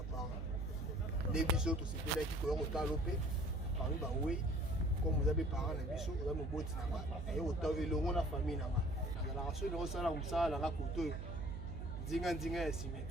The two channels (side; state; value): right; noise; hum, 5 dB below the sound